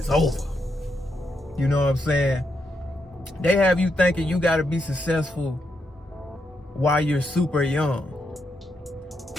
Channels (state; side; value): normal; both; correlation 0.81